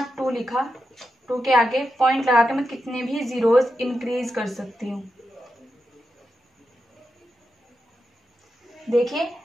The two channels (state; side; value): normal; both; correlation 0.88